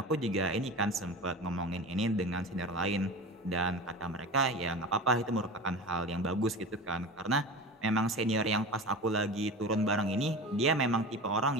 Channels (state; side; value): normal; both; correlation 0.32